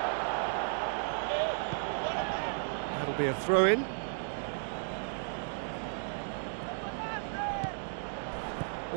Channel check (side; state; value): left; silent; digital silence